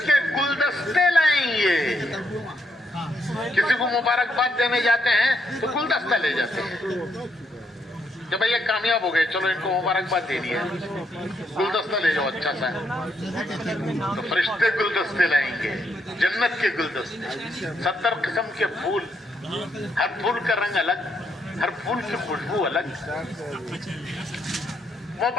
کے گلدستے لائیں گے. کسی کو مبارکباد دینے جاتے ہیں تو گلدستہ لے جاتے ہیں کہ بھئی یہ کامیاب ہو گئے، چلو ان کو مبارکباد دینی ہے، گلدستہ لے جاؤ اچھا سا. تو فرشتے گلدستے لائیں گے، جنت کے گلدستے، 70 قسم کے پھول، ہر پھول کا رنگ الگ، ہر پھول کی خوشبو الگ.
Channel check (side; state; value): both; normal; correlation 0.76